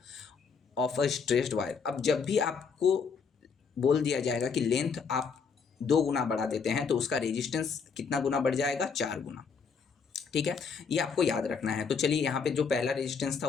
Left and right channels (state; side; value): quieter; right; 5.7 dB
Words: of a stretched wire. अब जब भी आपको बोल दिया जाएगा कि लेंथ आप 2 गुना बढ़ा देते हैं तो उसका रेजिस्टेंस कितना गुना बढ़ जाएगा, 4 गुना। ठीक है, ये आपको याद रखना है। तो चलिए यहाँ पे जो पहला रेजिस्टेंस था